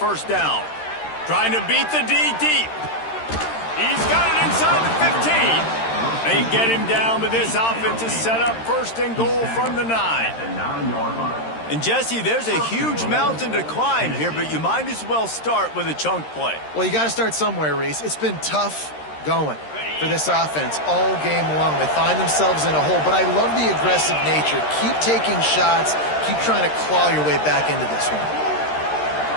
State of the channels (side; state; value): right; late; 13 ms